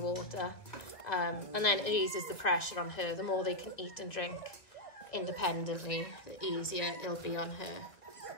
water. And then it eases the pressure on her. The more they can eat and drink independently, the easier it'll be on her.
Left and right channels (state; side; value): late; right; 2.1 ms